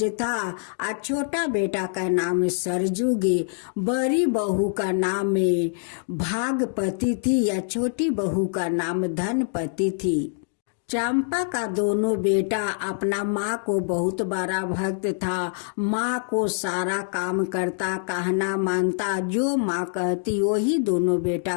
था और छोटा बेटा का नाम सरजुगे। बड़ी बहू का नाम भागपति थी या छोटी बहू का नाम धनपति थी। चंपा का दोनों बेटा अपना माँ को बहुत बड़ा भक्त था। माँ को सारा काम करता, कहना मानता, जो माँ कहती वही दोनों बेटा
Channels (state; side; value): silent; right; digital silence